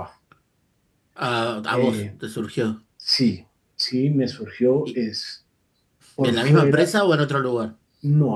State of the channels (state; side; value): identical; both; correlation 1.00